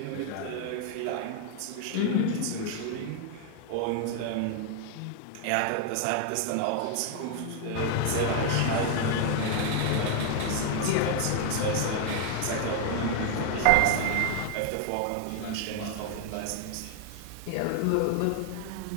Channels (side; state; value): both; different; correlation 0.00